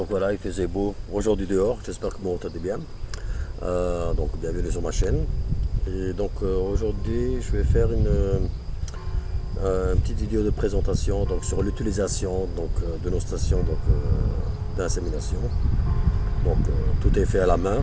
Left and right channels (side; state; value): both; identical; correlation 1.00